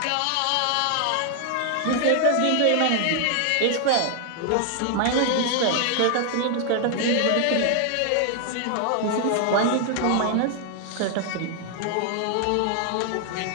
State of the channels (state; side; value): different; both; correlation 0.00